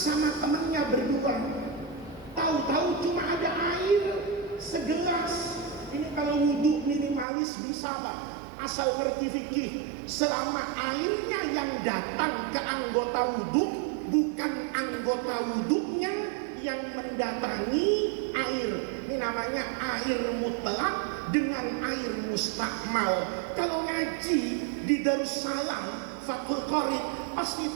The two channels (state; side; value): drops out; left; at 7.2 s